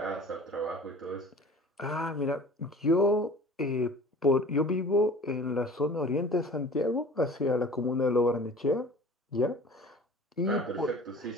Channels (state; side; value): normal; both; correlation 0.43